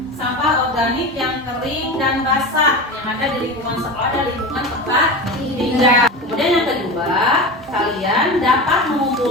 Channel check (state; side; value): normal; both; correlation 0.27